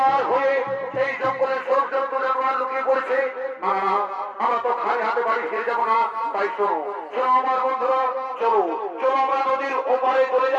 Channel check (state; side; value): identical; both; correlation 1.00